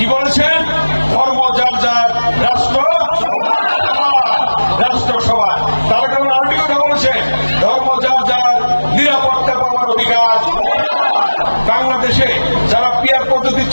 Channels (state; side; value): inverted; both; correlation -1.00